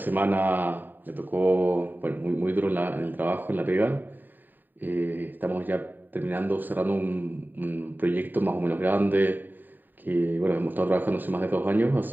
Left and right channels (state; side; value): late; left; 0.090 ms